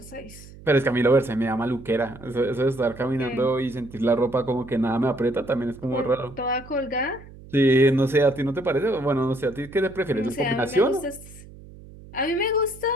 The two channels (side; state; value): right; noise; hum, 19 dB below the sound